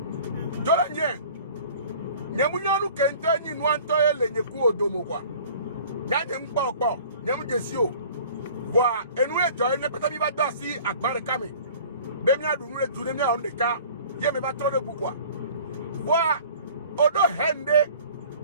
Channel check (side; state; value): both; inverted; correlation -0.47